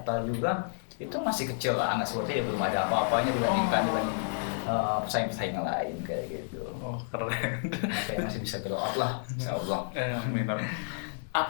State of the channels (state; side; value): silent; right; digital silence